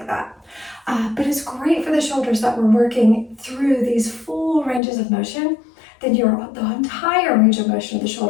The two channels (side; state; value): right; drops out; at 4.8 s